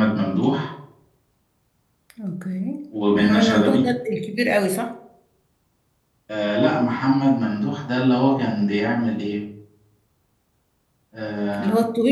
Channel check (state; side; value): identical; both; correlation 1.00